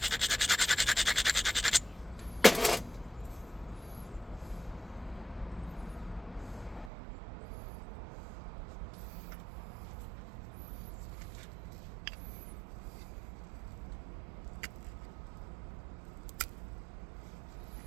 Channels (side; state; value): left; drops out; at 6.9 s